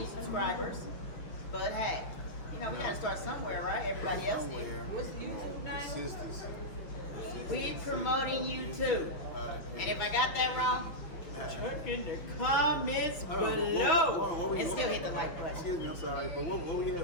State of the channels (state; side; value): late; right; 5.8 ms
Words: subscribers, but hey, we got to start somewhere, right? Everybody else did. What's the YouTube name? Consistency. We promoting you too. And if I got that wrong, check in the comments below and still hit the like button. Excuse me, I'm sorry, but what we